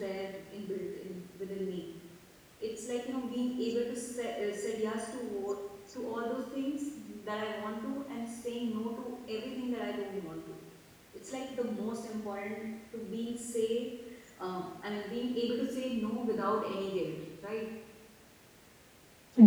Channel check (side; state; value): both; identical; correlation 1.00